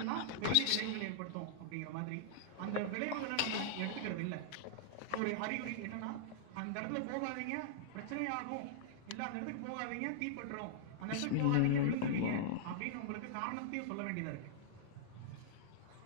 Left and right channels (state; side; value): different; both; correlation -0.01